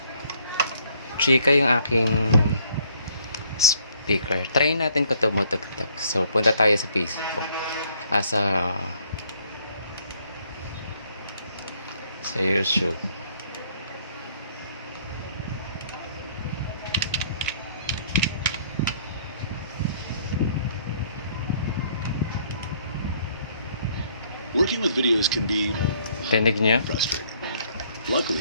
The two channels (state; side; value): inverted; both; correlation -0.64